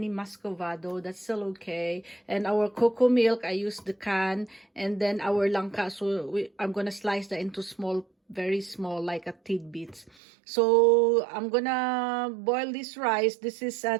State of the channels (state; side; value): drops out; left; at 10.1 s